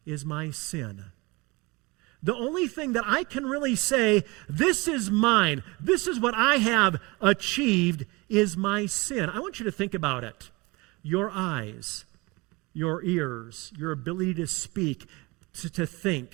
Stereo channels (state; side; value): quieter; left; 24.7 dB